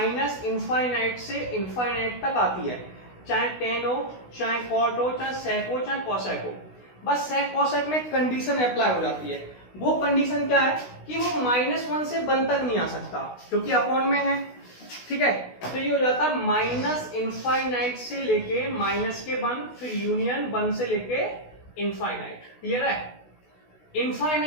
से इनफाइनाइट तक आती है, चाहे टेन हो, चाहे कॉट हो, चाहे सेक हो, चाहे कॉसेक हो। बस सेक कॉसेक में कंडीशन अप्लाई हो जाती है। वो कंडीशन क्या है कि वो -1 से 1 तक नहीं आ सकता, क्योंकि अपॉन में है। ठीक है, तो ये हो जाता है -इनफाइनाइट से लेके -1, फिर यूनियन 1 से लेके इनफाइनाइट। क्लियर है?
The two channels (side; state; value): right; late; 16 ms